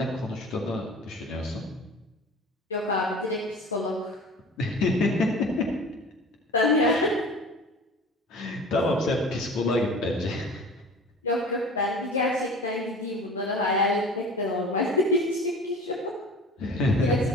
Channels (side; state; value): both; normal; correlation 0.40